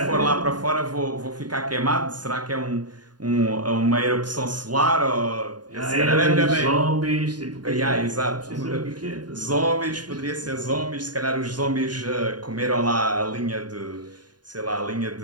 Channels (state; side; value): late; left; 0.70 ms